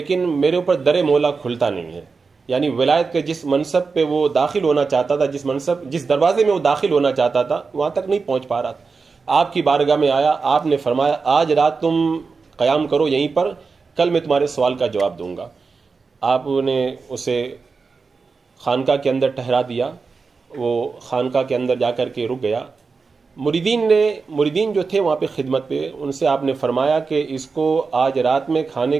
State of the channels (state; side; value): quieter; left; 4.7 dB